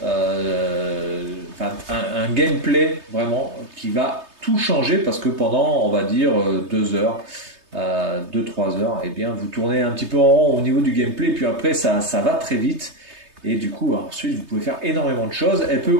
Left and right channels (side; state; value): left; late; 3.3 ms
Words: un gameplay vraiment qui va tout changer parce que pendant, on va dire, 2 heures, 2-3 heures, eh bien, vous tournez un petit peu en rond au niveau du gameplay, puis après, ça va très vite. Et du coup, ensuite, vous pouvez faire énormément de choses. Elle peut